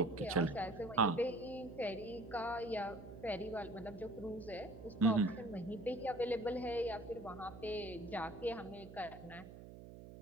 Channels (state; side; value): noise; right; hum, 14 dB below the sound